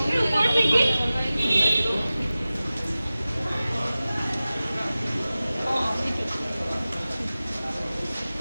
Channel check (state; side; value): inverted; both; correlation -0.96